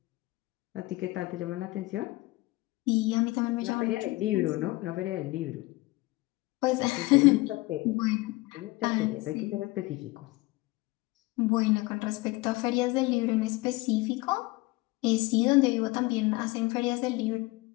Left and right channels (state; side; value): quieter; right; 21.5 dB